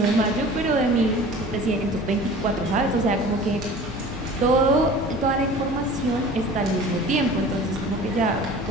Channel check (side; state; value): both; normal; correlation 0.42